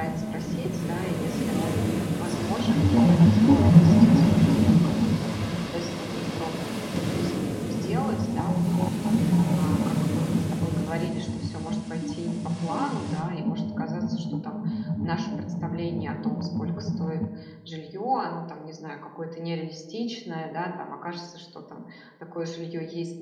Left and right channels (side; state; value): both; identical; correlation 1.00